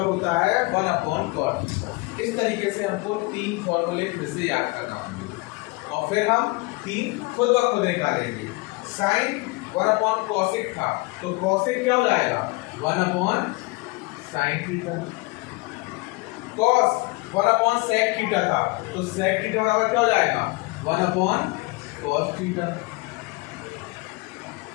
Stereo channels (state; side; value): quieter; right; 24.6 dB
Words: होता है 1 अपॉन कॉट थीटा। इस तरीके से हमको 3 फॉर्मूले फिर से याद करना होंगे और फिर हम 3 खुद ब खुद निकालेंगे। साइन 1/cosec था, तो cosec क्या हो जाएगा 1/sin theta. cos 1/sec theta था, तो sec थीटा बराबर क्या हो जाएगा 1/cos थीटा।